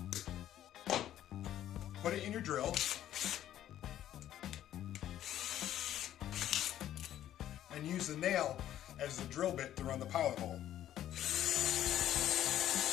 put it in your drill, and use the nail as the drill bit to run the pilot hole.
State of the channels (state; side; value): quieter; right; 11.9 dB